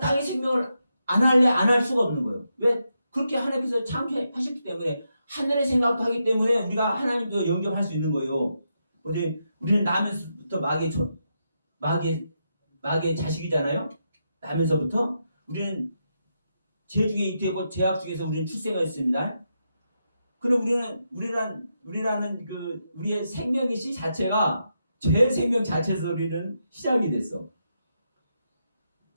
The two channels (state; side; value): inverted; both; correlation -0.84